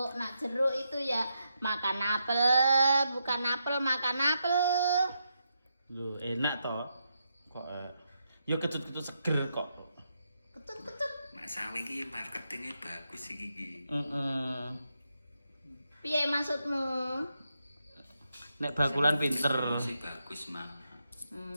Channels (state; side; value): inverted; both; correlation -0.83